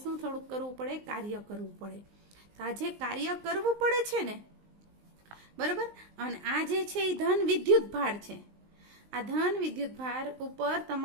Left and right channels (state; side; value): late; left; 19 ms